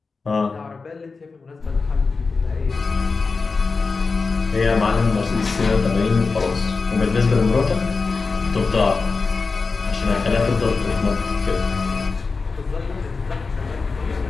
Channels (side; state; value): right; quieter; 4.4 dB